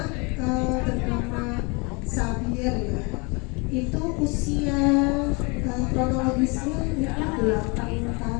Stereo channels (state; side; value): quieter; right; 30.1 dB